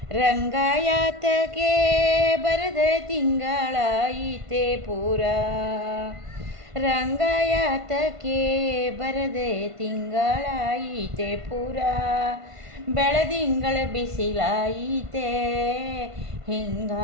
ರಂಗಾಯಾತಕ್ಕೆ ಬರದ ತಿಂಗಳಾಯಿತೆ ಪೂರ, ರಂಗಾಯಾತಕ್ಕೆ ಬರದೆ ತಿಂಗಳಾಯಿತೆ ಪೂರ, ಬೆಳದಿಂಗಳ ಬಿಸಿಲಾಯಿತೆ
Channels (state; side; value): late; left; 1.5 ms